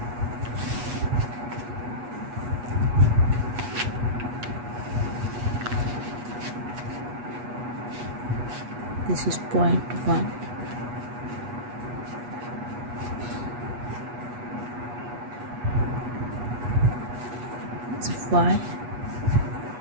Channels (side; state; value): left; late; 8.2 ms